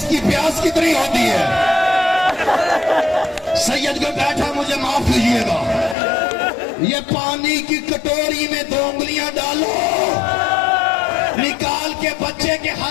प्यास कितनी होती है? सैयद को बैठा, मुझे माफ कीजिएगा, ये पानी की कटोरी में 2 उंगलियां डालो, निकाल के बच्चे के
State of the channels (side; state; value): right; drops out; at 6.0 s